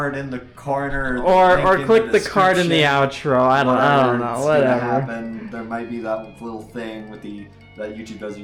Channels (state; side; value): identical; both; correlation 1.00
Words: in the corner, or click the card in the outro. I don't know. Whatever. There might be that little thing with that YouTube does.